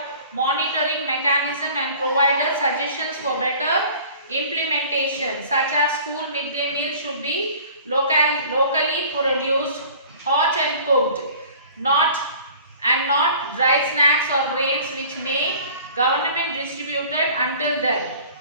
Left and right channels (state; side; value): inverted; both; correlation -0.47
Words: monitoring mechanism and provided suggestions for better implementation, such as school midday meal should be locally produced, hot and cooked, not dry snacks or grains which may government distributed until then.